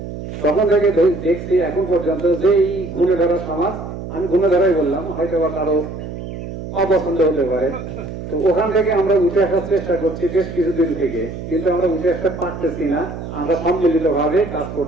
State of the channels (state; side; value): noise; right; hum, 9 dB below the sound